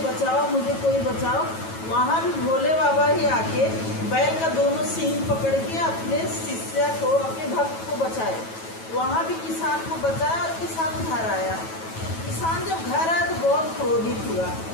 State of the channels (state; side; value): late; right; 9.2 ms